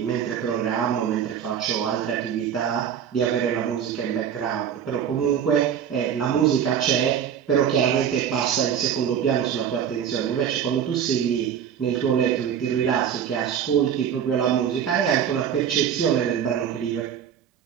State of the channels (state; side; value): quieter; left; 8.6 dB